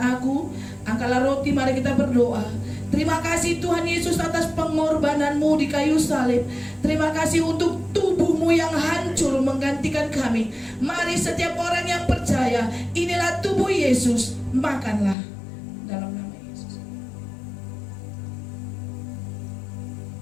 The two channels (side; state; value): right; drops out; at 15.2 s